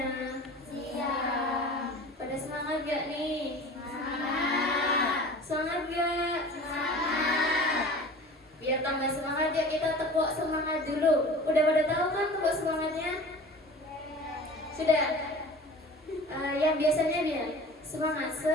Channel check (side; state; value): both; normal; correlation 0.40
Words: Siang. Pada semangat gak nih? Semangat. Semangat gak? Semangat. Biar tambah semangat ya kita tepuk semangat dulu. Udah pada tahu kan tepuk semangatnya? Sudah? Yang biasanya dia